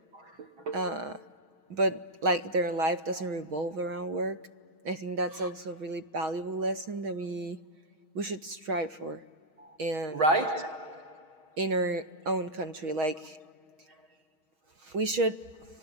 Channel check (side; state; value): left; late; 6.3 ms